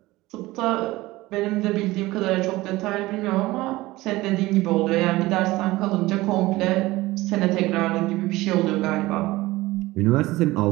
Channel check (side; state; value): left; quieter; 19.1 dB